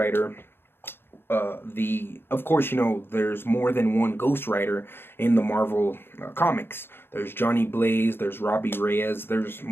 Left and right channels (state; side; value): late; right; 0.11 ms